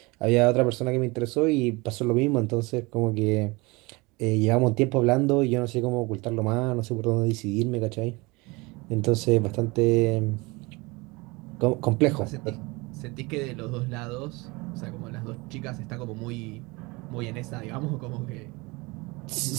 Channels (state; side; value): quieter; left; 24.9 dB